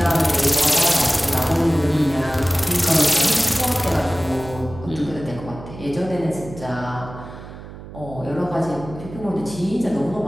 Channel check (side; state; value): right; noise; hum, 14 dB below the sound